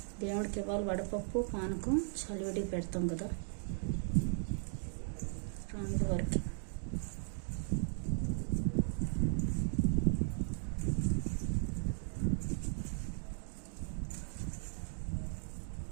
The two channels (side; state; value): left; silent; digital silence